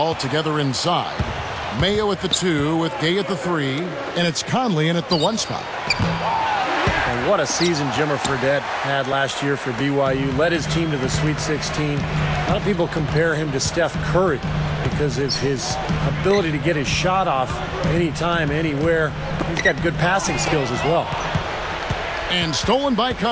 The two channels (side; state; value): both; identical; correlation 1.00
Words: together inside. Mayo at the 2 with Gay at the 3. And it's Conley in at the 1 spot. And what a season Jimmer Fredette had last year for BYU. Led his team to the Sweet 16. A lot of people compare him to Steph Curry because of his ability to get his shot off anytime, anywhere. He's got good passing skills as well. And stolen by